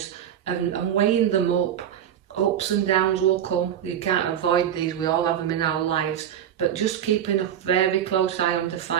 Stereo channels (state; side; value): quieter; left; 9.8 dB